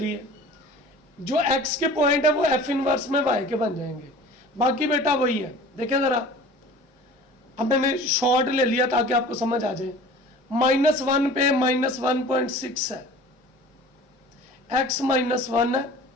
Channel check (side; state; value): both; normal; correlation 0.43